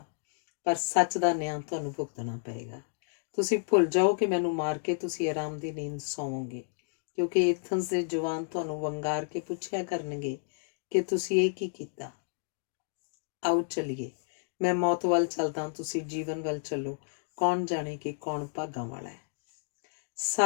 ਪਰ ਸੱਚ ਦਾ ਨਿਆਂ ਤੁਹਾਨੂੰ ਭੁਗਤਣਾ ਪਏਗਾ। ਤੁਸੀਂ ਭੁੱਲ ਜਾਓ ਕਿ ਮੈਨੂੰ ਮਾਰ ਕੇ ਤੁਸੀਂ ਆਰਾਮ ਦੀ ਨੀਂਦ ਸੌਵੋਗੇ, ਕਿਉਂਕਿ ਏਥਨਸ ਦੇ ਜਵਾਨ ਤੁਹਾਨੂੰ ਵੰਗਾਰ ਕੇ ਪੁੱਛਿਆ ਕਰਨਗੇ ਕਿ ਤੁਸੀਂ ਇਹ ਕੀ ਕੀਤਾ। ਆਓ ਚੱਲੀਏ, ਮੈਂ ਮੌਤ ਵੱਲ ਚੱਲਦਾ, ਤੁਸੀਂ ਜੀਵਨ ਵੱਲ ਚੱਲੋ। ਕੌਣ ਜਾਣੇ ਕਿ ਕੌਣ ਭਾਗਾਂ ਵਾਲਾ ਹੈ।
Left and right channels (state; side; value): silent; right; digital silence